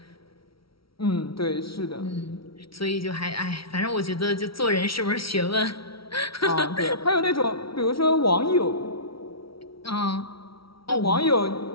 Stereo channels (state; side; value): late; right; 0.75 ms